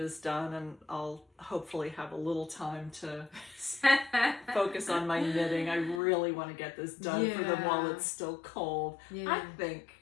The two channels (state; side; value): drops out; right; at 6.0 s